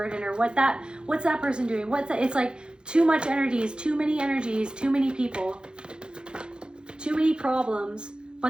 or what's that person doing? It's like too much energies, too many people, too many problems.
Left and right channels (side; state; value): left; late; 0.049 ms